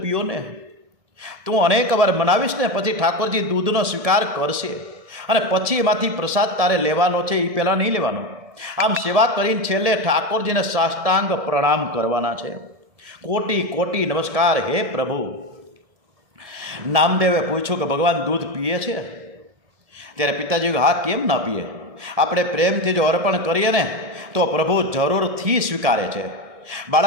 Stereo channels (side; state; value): left; late; 1.7 ms